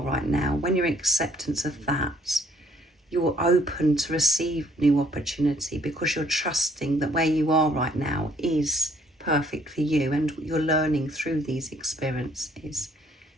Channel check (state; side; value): normal; both; correlation 0.62